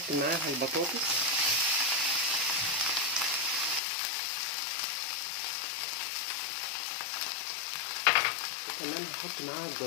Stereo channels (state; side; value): drops out; right; at 3.8 s